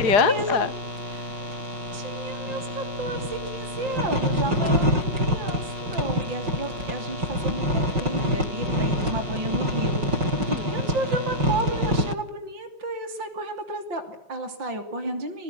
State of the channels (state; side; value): late; left; 5.4 ms